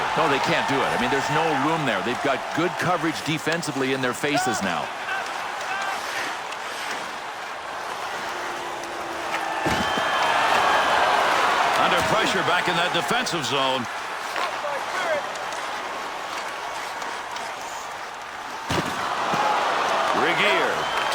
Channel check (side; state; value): both; identical; correlation 1.00